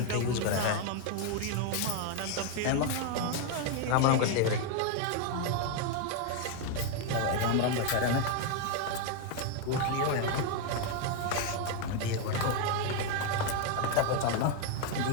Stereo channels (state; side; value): different; both; correlation 0.01